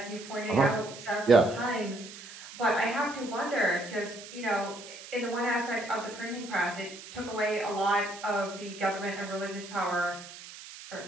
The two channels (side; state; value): right; noise; hiss, 15 dB below the sound